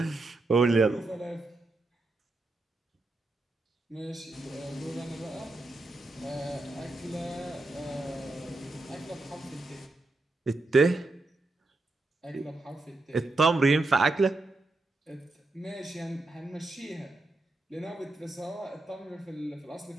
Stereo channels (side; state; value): left; quieter; 3.0 dB